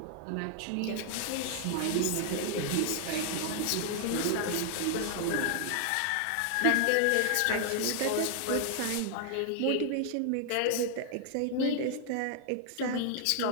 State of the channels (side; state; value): both; different; correlation 0.00